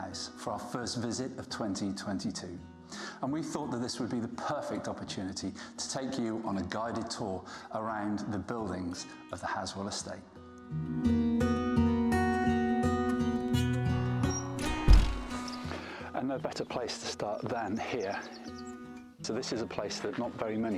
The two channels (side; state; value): both; identical; correlation 1.00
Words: for our first visit of 2022. And we thought that this would be the perfect opportunity to take you on a guided tour around the buildings of the Halswell Estate. And no better place to start than here. So this is a place that not very